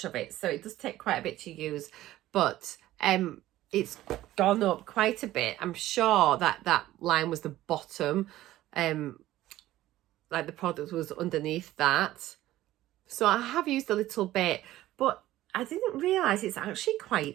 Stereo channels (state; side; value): quieter; left; 15.1 dB